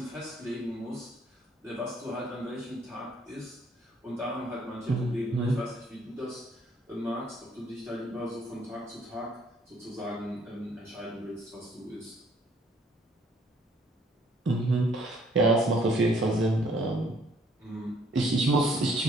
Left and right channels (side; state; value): both; normal; correlation 0.63